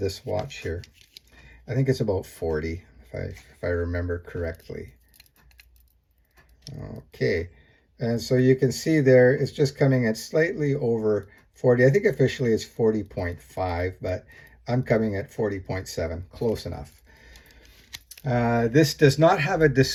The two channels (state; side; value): identical; both; correlation 1.00